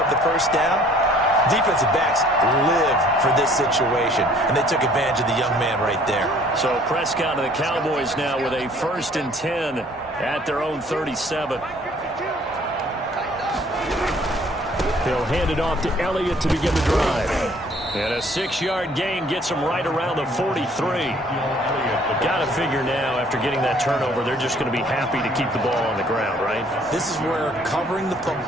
the first down. Defensive backs live for this situation, and they took advantage of the young man right there. So Prescott and the Cowboys now with a 1st and 10 at their own 37. He'll hand it off to Elliott to begin the drive. And a 6-yard gain gets him right around the 43. Got to figure now, after getting that turnover, they're just going to be happy to keep the ball on the ground, right? This is where covering the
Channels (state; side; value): normal; both; correlation 0.57